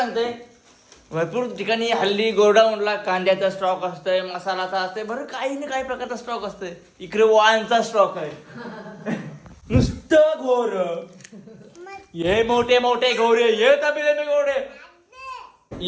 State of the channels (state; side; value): identical; both; correlation 1.00